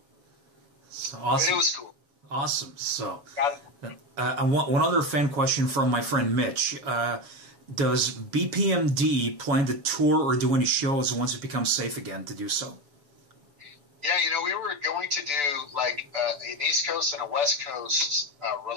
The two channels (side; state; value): left; late; 6.9 ms